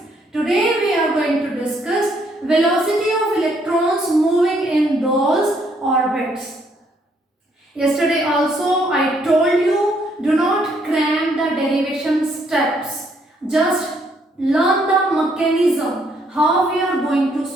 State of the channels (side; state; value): both; normal; correlation 0.70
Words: Today we are going to discuss velocity of electrons moving in those orbits. Yesterday also I told you, do not cram the derivation steps. Just learn the mechanism, how we are going to